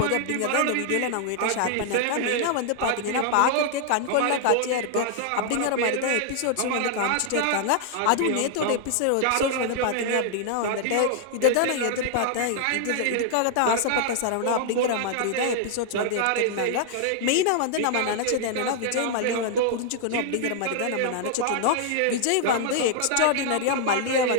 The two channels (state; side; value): different; both; correlation 0.00